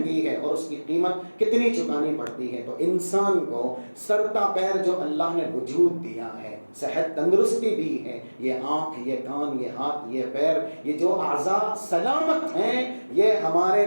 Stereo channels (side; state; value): both; inverted; correlation -1.00